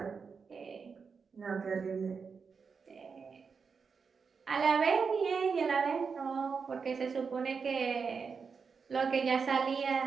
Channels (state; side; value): quieter; left; 5.5 dB